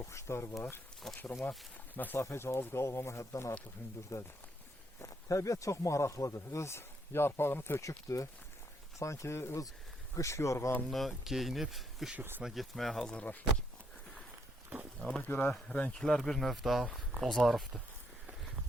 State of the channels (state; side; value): normal; both; correlation 0.74